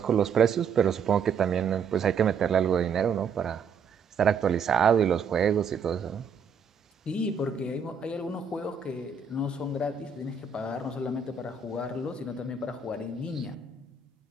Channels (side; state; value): left; quieter; 5.8 dB